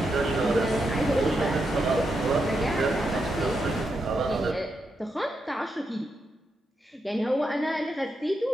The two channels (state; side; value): normal; both; correlation 0.84